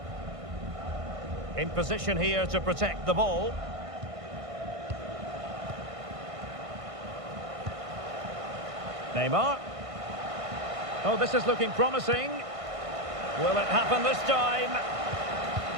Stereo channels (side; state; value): left; late; 1.5 ms